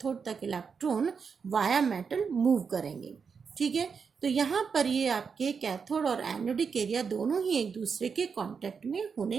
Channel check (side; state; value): left; quieter; 5.9 dB